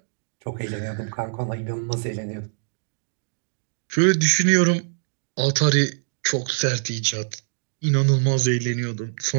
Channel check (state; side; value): silent; left; digital silence